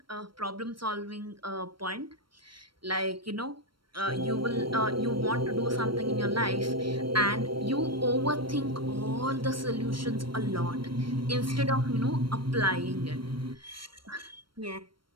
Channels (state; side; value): late; left; 0.73 ms